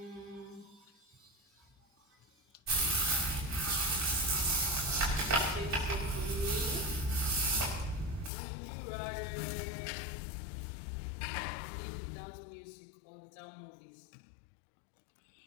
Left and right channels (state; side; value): drops out; right; at 8.3 s